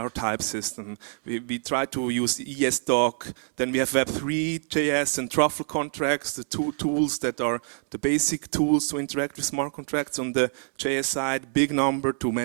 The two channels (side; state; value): left; silent; 57 dB below the other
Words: type system. We try to use ESDoc. Then we have Web3, JS, and Truffle contracts, the two tools that are the basic tools to interact with smart contracts on the JS side. Big Number to